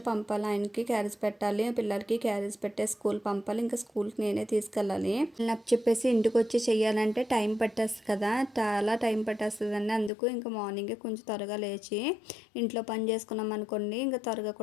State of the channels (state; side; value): drops out; right; at 10.1 s